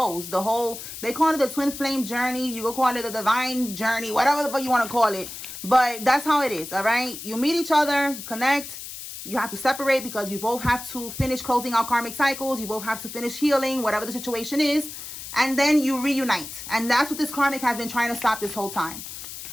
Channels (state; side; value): noise; left; hiss, 10 dB below the sound